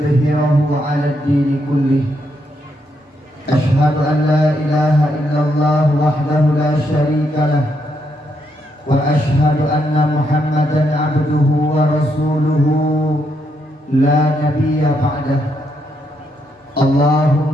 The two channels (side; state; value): both; normal; correlation 0.78